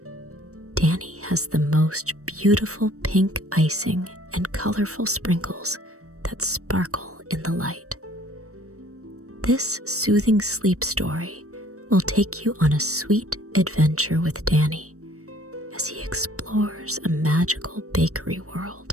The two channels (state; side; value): late; left; 0.65 ms